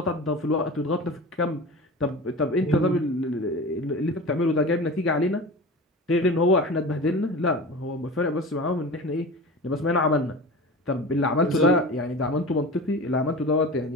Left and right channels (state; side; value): normal; both; correlation 0.33